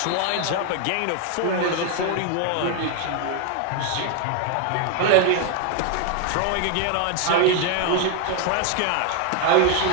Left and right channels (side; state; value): both; different; correlation 0.01